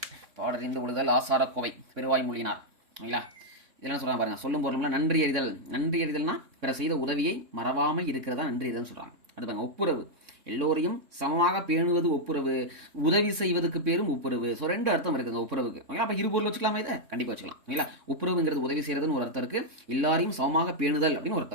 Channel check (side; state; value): left; late; 3.6 ms